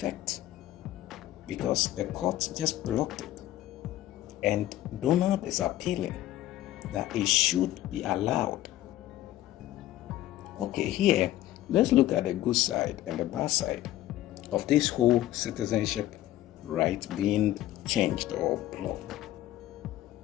because the court just blocked it. And Donald is appealing that it should be allowed. Okay, here, let's look at the good side and the bad side of this whole citizenship right being changed or blocked.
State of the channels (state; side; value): quieter; right; 14.5 dB